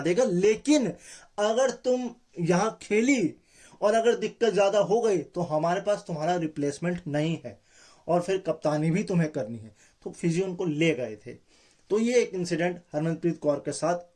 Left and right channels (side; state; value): both; identical; correlation 1.00